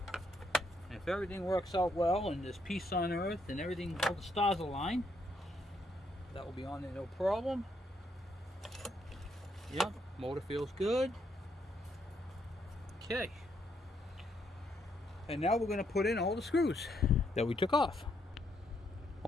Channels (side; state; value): both; normal; correlation 0.75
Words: If everything works out well and there's peace on earth and everything, all the stars align, that will be on there no problem. Yep, motor feels good. Okay. And now we're going to put in all the screws that we took off.